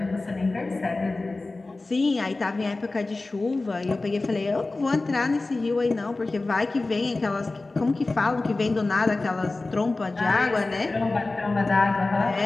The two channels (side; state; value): right; quieter; 3.3 dB